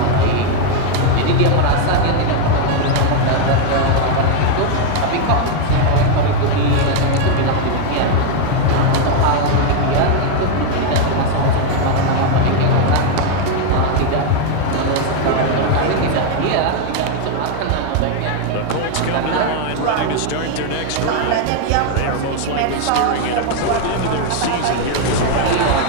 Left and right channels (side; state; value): both; different; correlation 0.01